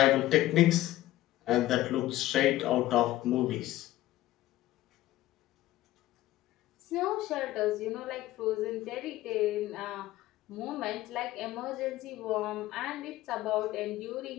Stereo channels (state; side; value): quieter; right; 15.6 dB